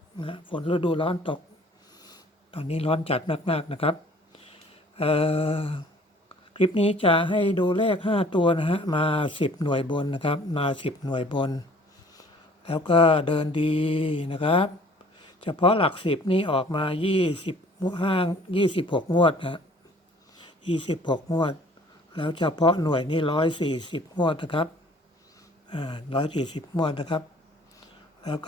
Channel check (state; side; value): normal; both; correlation 0.53